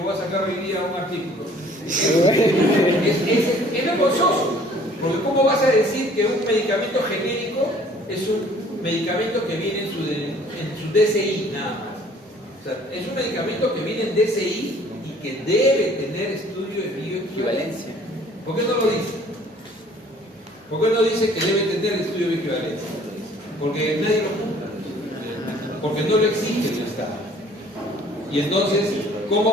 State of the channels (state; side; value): normal; both; correlation 0.55